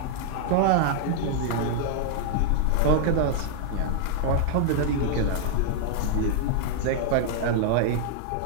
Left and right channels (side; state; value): both; different; correlation -0.01